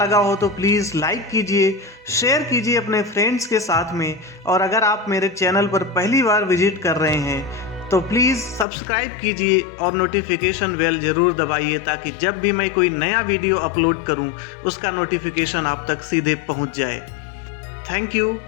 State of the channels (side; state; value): right; drops out; at 8.7 s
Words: हो तो प्लीज़ लाइक कीजिए, शेयर कीजिए अपने फ्रेंड्स के साथ में। और अगर आप मेरे चैनल पर पहली बार विजिट कर रहे हैं तो प्लीज़ सब्सक्राइब कीजिए और नोटिफिकेशन बेल ज़रूर दबाइए, ताकि जब भी मैं कोई नया वीडियो अपलोड करूं उसका नोटिफिकेशन आप तक सीधे पहुंच जाए। Thank you